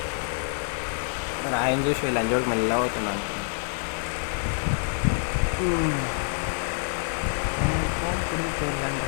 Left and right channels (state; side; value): silent; right; digital silence